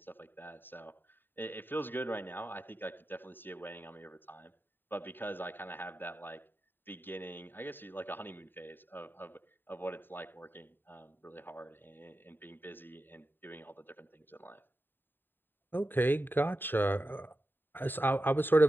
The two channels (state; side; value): late; right; 0.095 ms